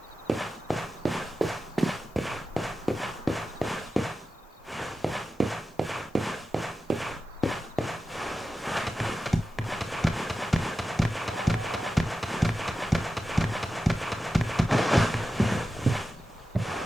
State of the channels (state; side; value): normal; both; correlation 0.93